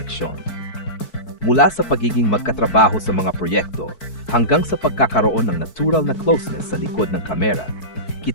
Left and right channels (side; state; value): right; late; 4.6 ms